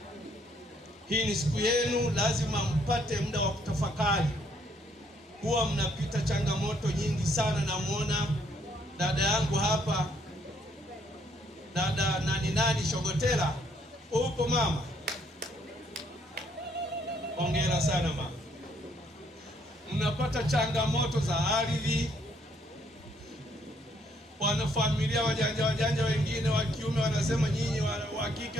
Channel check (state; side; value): normal; both; correlation 0.68